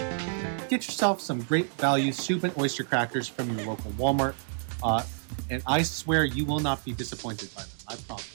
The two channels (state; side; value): silent; left; digital silence